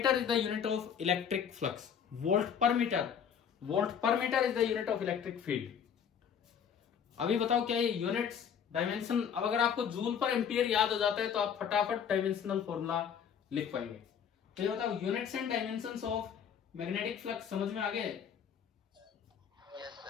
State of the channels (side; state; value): right; quieter; 7.9 dB